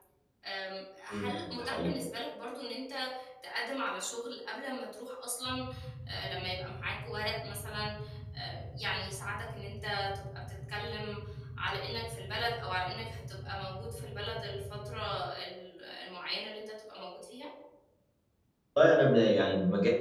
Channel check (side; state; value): both; identical; correlation 1.00